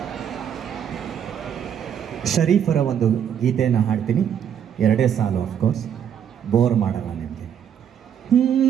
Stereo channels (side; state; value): left; quieter; 8.8 dB